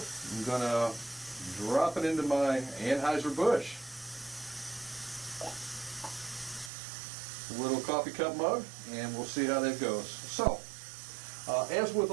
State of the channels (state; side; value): drops out; left; at 6.7 s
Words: I'm going to drop it into my Anheuser-Busch. Little coffee cup mug, and we'll see how that goes. So, as with